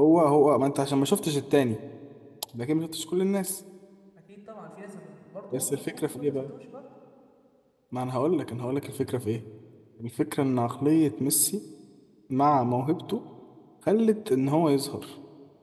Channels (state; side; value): identical; both; correlation 1.00